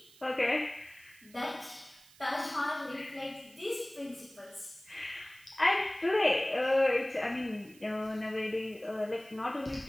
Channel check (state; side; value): noise; right; hiss, 24 dB below the sound